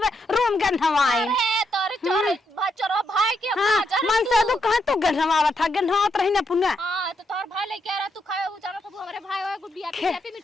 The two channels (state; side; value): normal; both; correlation 0.80